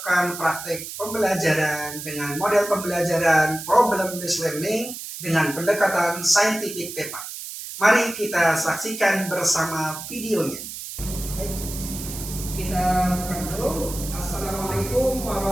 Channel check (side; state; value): right; noise; hiss, 9 dB below the sound